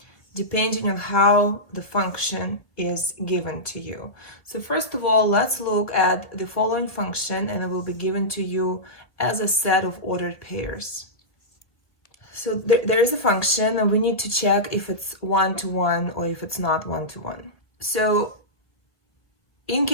depending on how the function is given to you. So first of all, let's look at the following function, and it will be given to you as a set of ordered pairs. So there is a function, and we need to check if it's one-to-one or if it's not one-to-one. So in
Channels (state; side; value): late; right; 1.8 ms